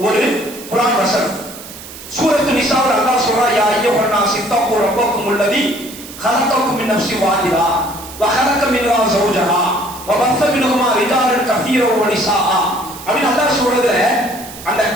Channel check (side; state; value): right; noise; hiss, 15 dB below the sound